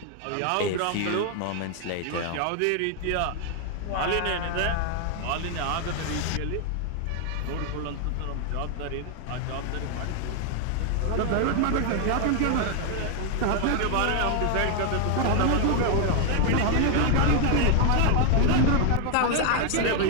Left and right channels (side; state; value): both; different; correlation 0.00